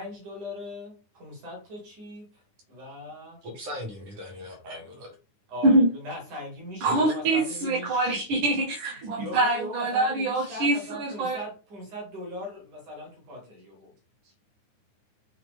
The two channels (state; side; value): late; left; 9.6 ms